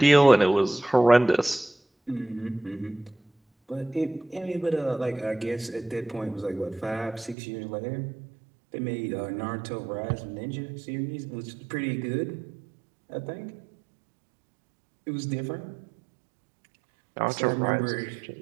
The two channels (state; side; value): drops out; left; at 7.4 s